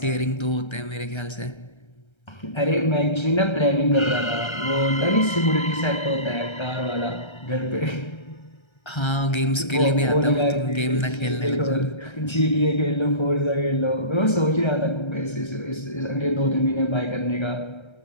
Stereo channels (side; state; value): right; late; 1.3 ms